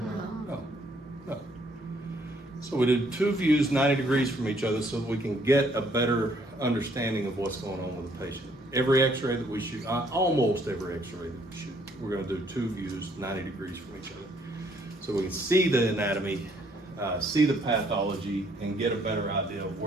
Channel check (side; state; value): both; normal; correlation 0.66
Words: No. So we did 2 views 90 degrees from each other so that we can get a better understanding of what's going on with the patient. Every X-ray that we shoot, almost every X-ray that we shoot, we're going to do 2 views 90 degrees from each other. So we can see the anatomy, see the pathology, and get a better idea of